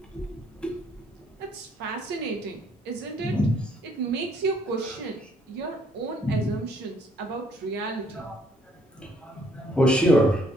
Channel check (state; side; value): normal; both; correlation 0.66